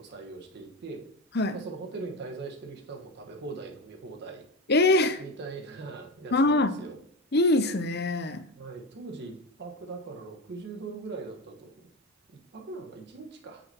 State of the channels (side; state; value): both; normal; correlation 0.21